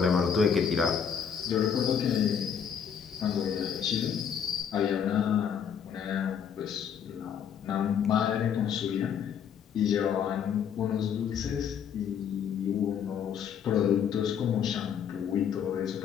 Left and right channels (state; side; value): quieter; right; 7.8 dB